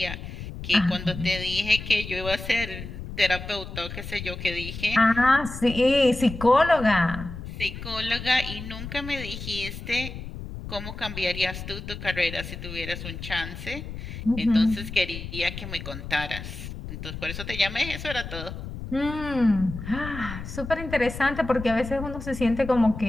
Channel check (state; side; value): noise; left; rumble, 9 dB below the sound